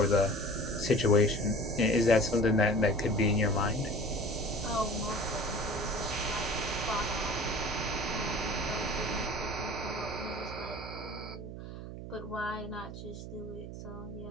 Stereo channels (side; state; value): right; noise; hum, 10 dB below the sound